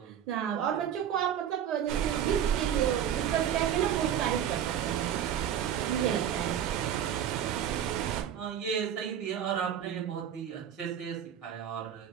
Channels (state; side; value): quieter; left; 9.6 dB